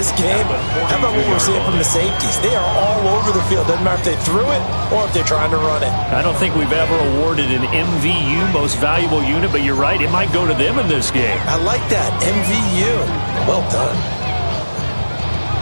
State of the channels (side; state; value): both; inverted; correlation -1.00